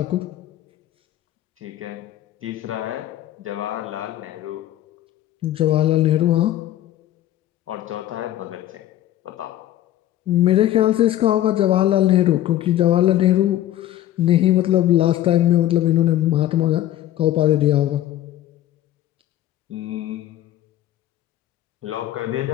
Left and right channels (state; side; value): quieter; right; 13.2 dB